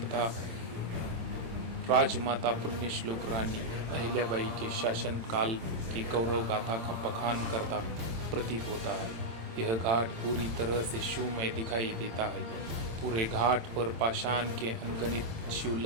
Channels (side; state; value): left; late; 26 ms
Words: राजमाता पुण्यश्लोक रानी अहिल्याबाई के शासन काल की गौरव गाथा का बखान करता प्रतीत होता है। यह घाट पूरी तरह से शिवमय दिखाई देता है। पूरे घाट पर पाषाण के अनगिनत